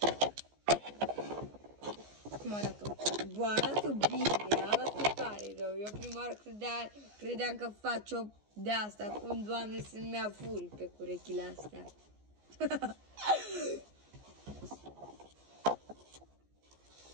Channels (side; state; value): left; late; 14 ms